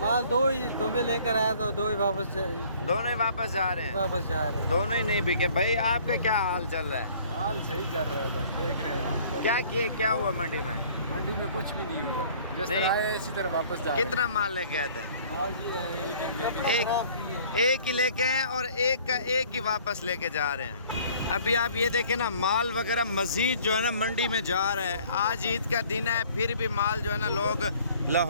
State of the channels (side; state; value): both; inverted; correlation -0.54